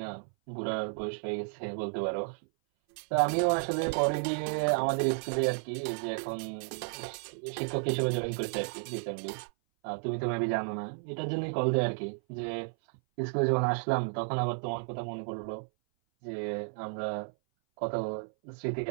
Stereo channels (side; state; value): left; silent; 56 dB below the other